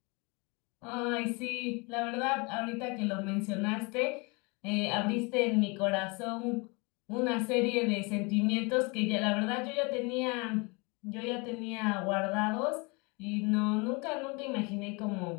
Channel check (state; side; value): quieter; right; 28.8 dB